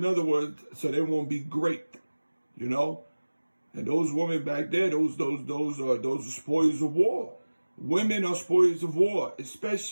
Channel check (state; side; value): inverted; both; correlation -1.00